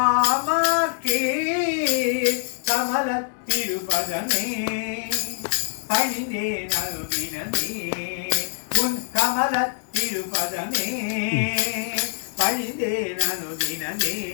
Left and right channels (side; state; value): right; silent; digital silence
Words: கமல திருபதமே பணிந்தே நல்வினமே உன் கமல திருபதமே பணிந்தே நனுதினமே